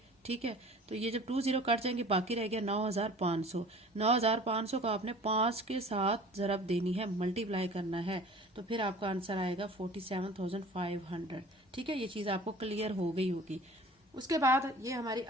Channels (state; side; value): normal; both; correlation 0.45